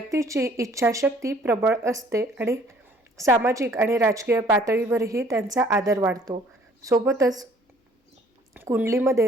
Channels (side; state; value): both; normal; correlation 0.58